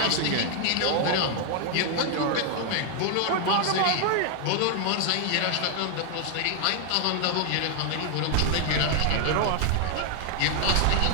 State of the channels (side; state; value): both; different; correlation 0.00